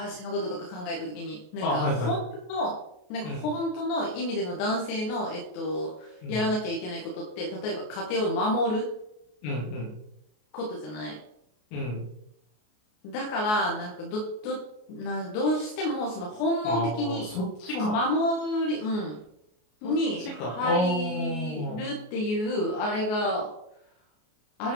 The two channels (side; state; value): right; late; 33 ms